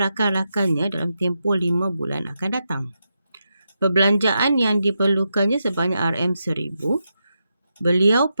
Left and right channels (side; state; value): both; inverted; correlation -0.86